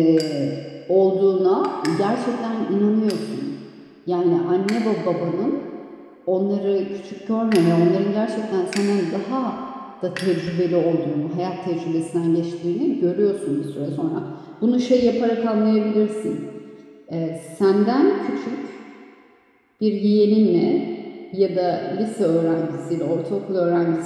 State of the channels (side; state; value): both; identical; correlation 1.00